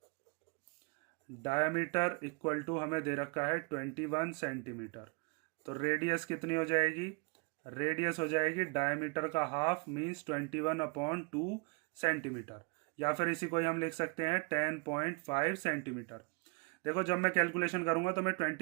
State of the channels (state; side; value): quieter; left; 31.4 dB